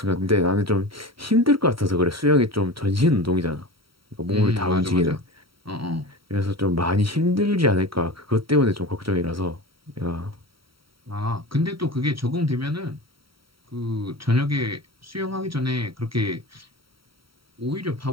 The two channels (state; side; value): late; left; 0.75 ms